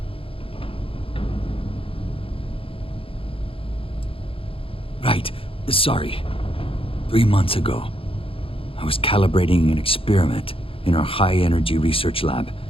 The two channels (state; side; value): late; right; 0.27 ms